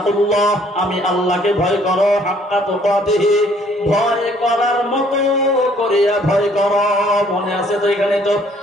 আমি আল্লাহকে ভয় করো, হাক্কা তুকাতিহি, ভয় করার মতো করিয়া ভয় করো। মনে আছে তো? এখানে তো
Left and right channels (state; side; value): normal; both; correlation 0.61